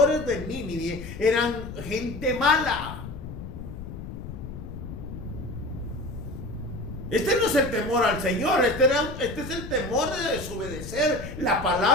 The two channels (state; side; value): noise; left; rumble, 10 dB below the sound